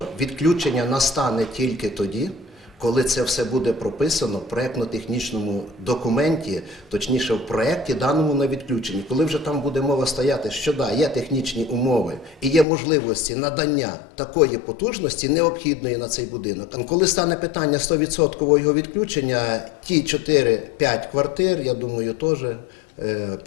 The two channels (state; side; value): drops out; right; at 12.7 s